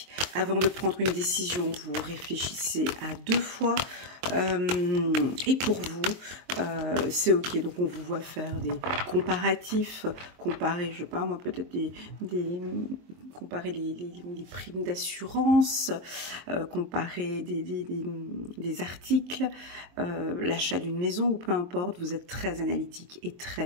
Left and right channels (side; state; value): left; late; 23 ms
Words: Avant de prendre une décision, vous réfléchissez à 2 fois. Et pour vous, c'est ok. Donc on vous voit faire des comparatifs, comparer, je sais pas moi, peut-être comparer les primes d'assurance, comparer des articles, l'achat d'une maison ou peu importe. Vous êtes très analytique et